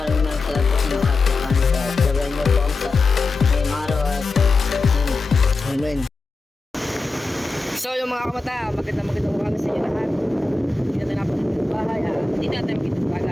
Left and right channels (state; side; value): quieter; right; 3.5 dB